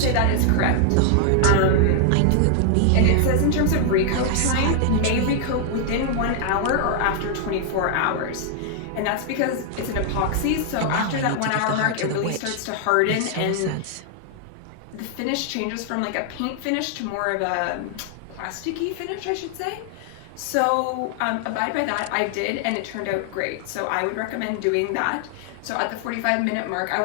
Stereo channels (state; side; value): different; both; correlation 0.00